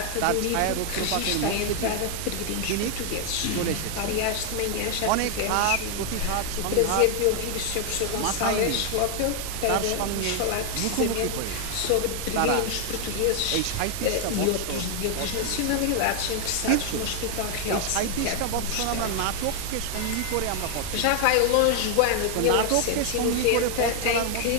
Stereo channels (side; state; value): both; different; correlation 0.00